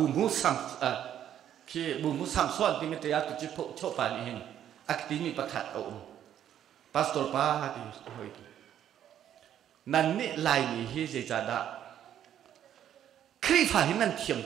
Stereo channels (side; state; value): left; quieter; 10.4 dB